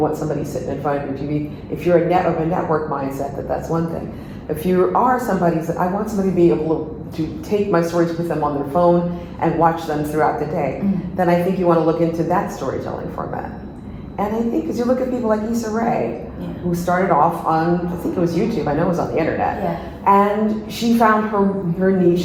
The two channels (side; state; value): both; identical; correlation 1.00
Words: somebody sitting in front of your TV, if you're of a network mindset, that's one thing. If you are somebody that I want somebody to be able to take my stories with them on their phone and watch them throughout the day, then I think you want to look into that storytelling format. And I think, because you look at people like Issa Rae, who started off on, I think it was YouTube, I know it was on the internet, and she found her niche